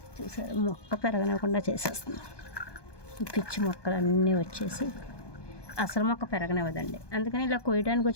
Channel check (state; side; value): late; right; 1.2 ms